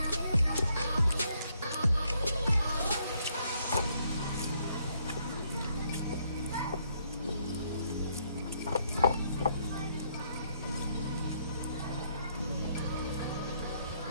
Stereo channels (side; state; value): both; inverted; correlation -0.71